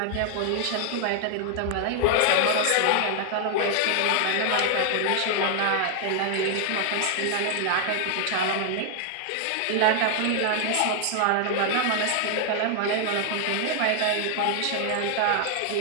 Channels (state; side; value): different; both; correlation 0.00